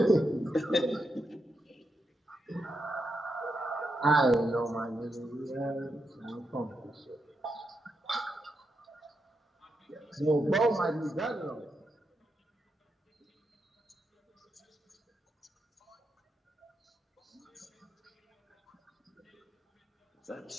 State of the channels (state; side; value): normal; both; correlation 0.84